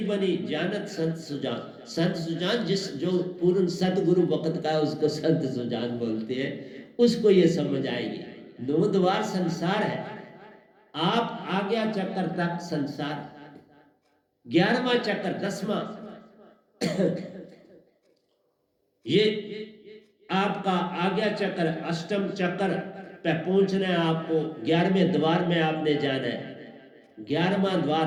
बनी, जानत संत सुजान। संत सुजान, जिस जो पूर्ण सतगुरु वक्त का उसको संत सुजान बोलते हैं, उसको ये समझ आएगी। 9 द्वार संसार है, आप आज्ञा चक्कर तक संसार, 11वां चक्कर, 10वां ये आपका आज्ञा चक्र, अष्टम चक्र पे पहुंचना है आपको, 11वें द्वार में आपने जाना है। 11वां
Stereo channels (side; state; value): both; identical; correlation 1.00